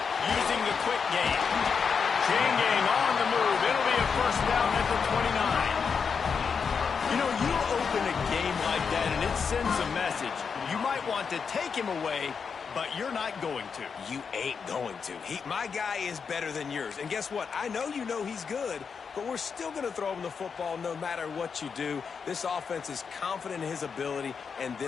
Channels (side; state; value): right; quieter; 6.0 dB